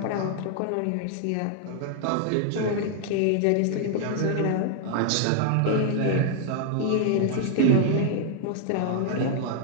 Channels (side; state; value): both; different; correlation 0.00